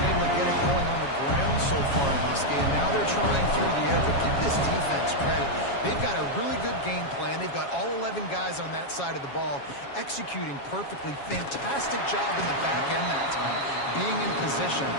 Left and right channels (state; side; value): late; right; 7.3 ms